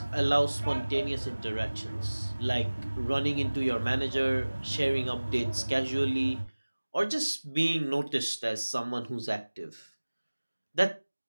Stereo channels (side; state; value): both; inverted; correlation -1.00